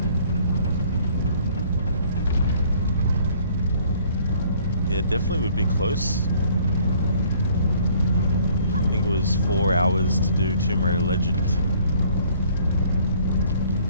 Yeah, definitely would be close. I think it was 4 hours to do Tomb Raider Legends.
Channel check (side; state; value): both; inverted; correlation -0.59